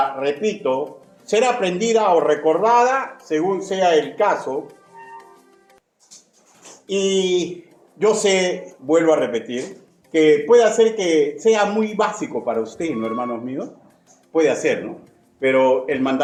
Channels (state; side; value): identical; both; correlation 1.00